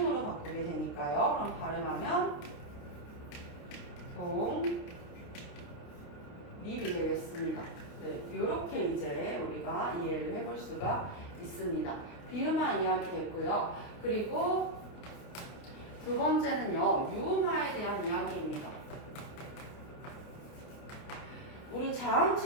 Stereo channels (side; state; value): right; late; 29 ms